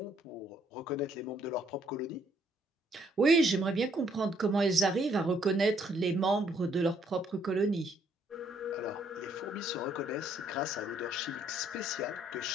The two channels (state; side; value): normal; both; correlation 0.68